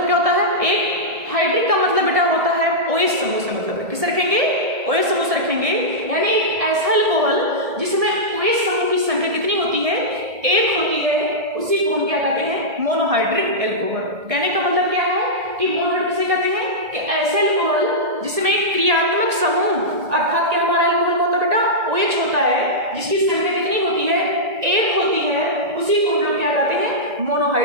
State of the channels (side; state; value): left; late; 1.7 ms